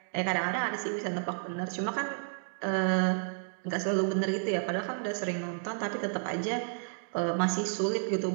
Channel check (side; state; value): left; silent; digital silence